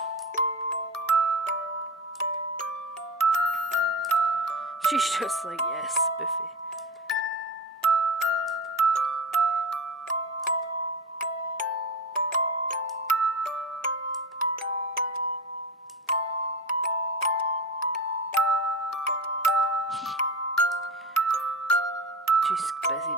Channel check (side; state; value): both; normal; correlation 0.26